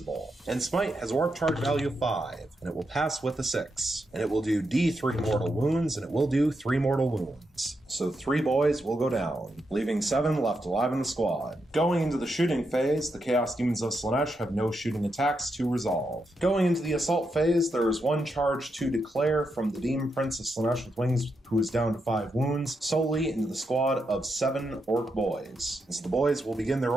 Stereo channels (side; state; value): both; normal; correlation 0.84